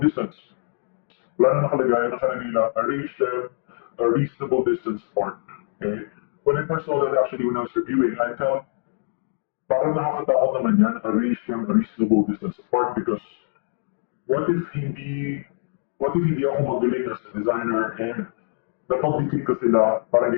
distance? Wala na nakalagay, nakalagay lang, arrange them a reasonable distance apart. Okay? When I first saw that actually when I was reviewing, I felt parang nakakatakot naman yan, arrange them a reasonable distance apart because what if hindi, what if hindi ako magaling as a designer and napag-defeat ko sila, parang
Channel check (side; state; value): right; silent; digital silence